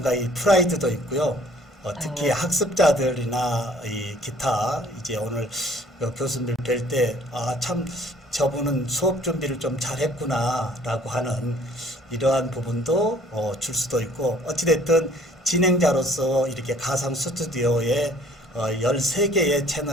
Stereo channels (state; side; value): normal; both; correlation 0.56